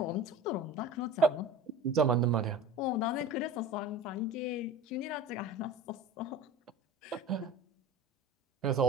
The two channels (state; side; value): normal; both; correlation 0.36